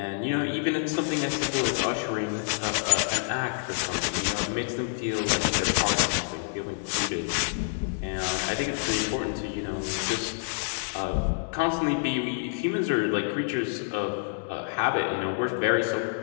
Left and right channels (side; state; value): right; silent; digital silence